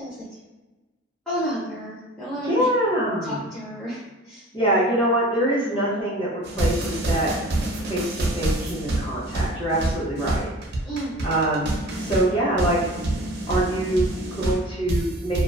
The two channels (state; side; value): normal; both; correlation 0.43